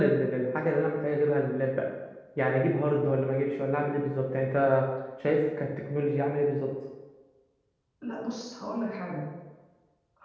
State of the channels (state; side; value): identical; both; correlation 1.00